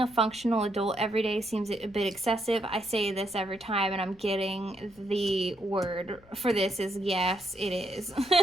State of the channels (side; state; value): left; noise; rumble, 28 dB below the sound